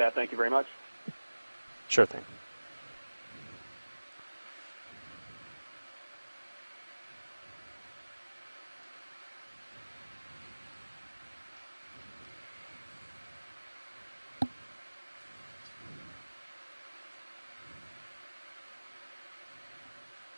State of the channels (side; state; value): both; inverted; correlation -1.00